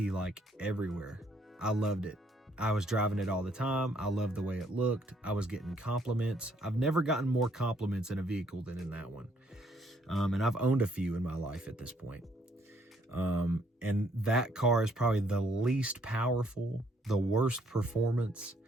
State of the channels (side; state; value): both; normal; correlation 0.67